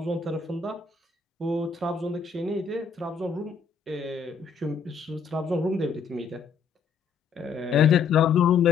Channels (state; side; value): quieter; right; 5.9 dB